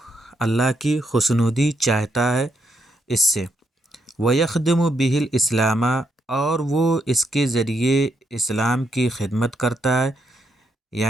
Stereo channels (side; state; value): both; normal; correlation 0.78